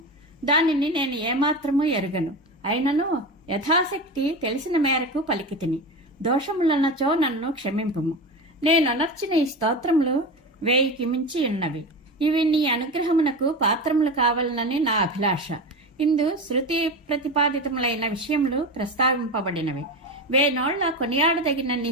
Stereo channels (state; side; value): normal; both; correlation 0.23